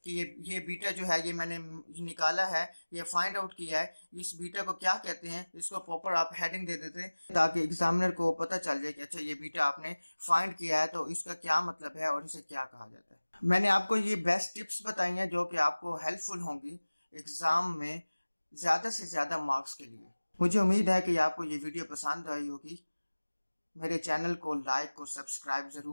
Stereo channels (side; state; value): both; inverted; correlation -1.00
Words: कि ये बीटा जो है ये मैंने निकाला है, ये फाइंड आउट किया है, इस बीटा को क्या कहते हैं, इसको प्रॉपर आप हेडिंग दे देते हैं ताकि एग्जामिनर को पता चल जाए कि अच्छा ये बीटा आपने फाइंड किया है तो इसका क्या मतलब है और इसे क्या कहा जाता है। मैंने आपको ये बेस्ट टिप्स बताई हैं जो कि आपको हेल्पफुल होंगी एग्जाम में ज्यादा से ज्यादा मार्क्स के लिए। मुझे उम्मीद है कि आपको ये वीडियो पसंद आई होगी। मेरे चैनल को लाइक और सब्सक्राइब